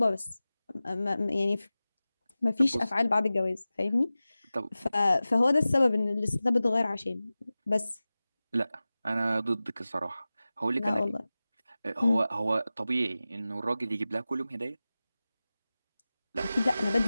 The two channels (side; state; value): both; inverted; correlation -0.96